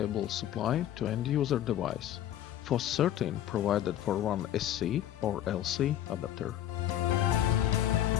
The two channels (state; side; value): quieter; right; 11.7 dB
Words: supply to end-user device. FOS-13 provided for one SC or LC adapter.